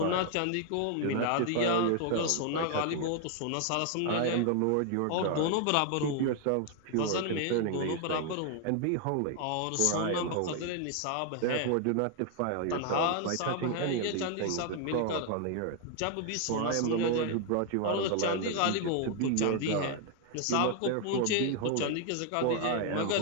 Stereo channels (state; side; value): different; both; correlation 0.00